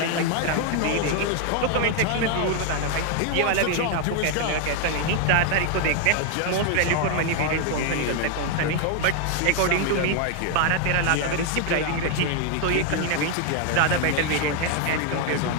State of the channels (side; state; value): both; different; correlation 0.00